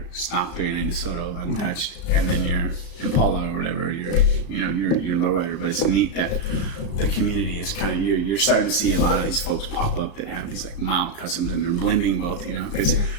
stock 39 DeSoto untouched, and then your Impala or whatever, your lowrider. But it's neat that the community is kind of, you're starting to see a lot of these folks pop up that have these like mild customs, and they're blending both, you know, because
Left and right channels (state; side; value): late; right; 35 ms